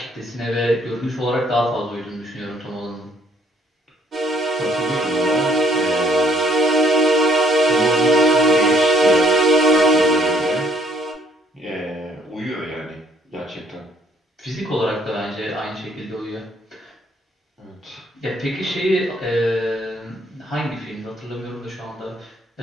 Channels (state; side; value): normal; both; correlation 0.64